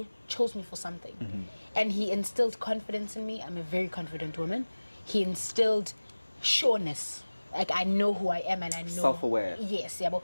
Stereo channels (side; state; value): both; inverted; correlation -1.00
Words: chose me for something. And he instilled confidence in me. I'm a very confident woman. He instilled sureness. Like, I know who I am and I know. Self-aware. Yes, yeah.